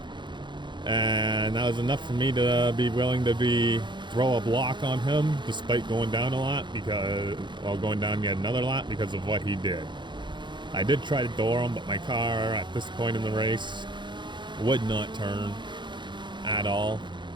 And that was enough for me to be willing to throw a block on him, despite going down a lap, going down yet another lap because of what he did. I did try to door him, but my car at this point in the race would not turn at all,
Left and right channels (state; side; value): late; left; 0.23 ms